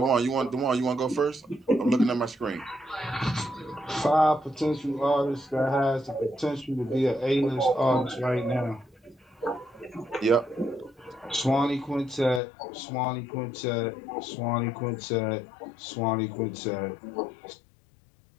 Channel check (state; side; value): drops out; right; at 12.4 s